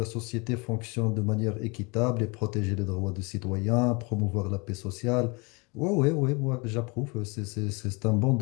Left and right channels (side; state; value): right; quieter; 28.6 dB